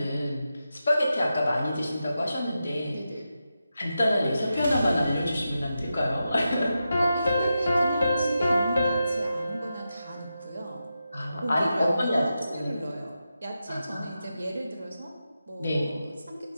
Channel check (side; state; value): both; inverted; correlation -0.89